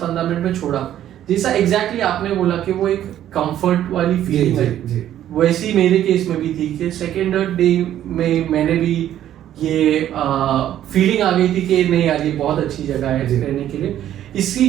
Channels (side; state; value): left; quieter; 11.6 dB